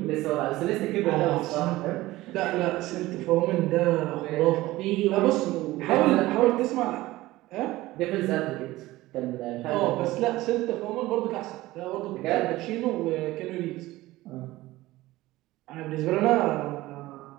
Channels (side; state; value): left; quieter; 17.9 dB